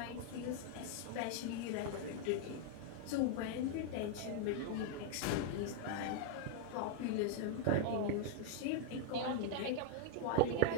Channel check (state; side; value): different; both; correlation 0.00